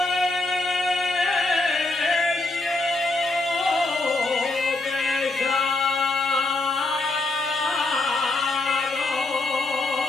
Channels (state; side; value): quieter; right; 3.1 dB